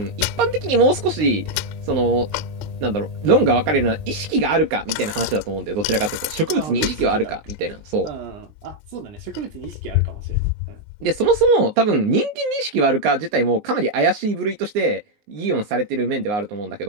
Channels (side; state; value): left; late; 19 ms